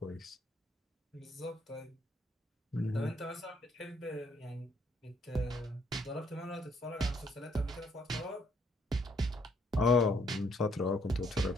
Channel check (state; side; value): normal; both; correlation 0.69